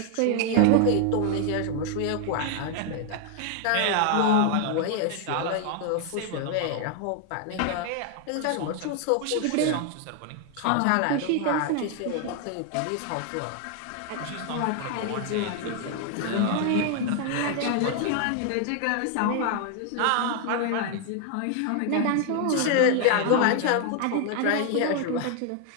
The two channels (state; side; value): different; both; correlation 0.00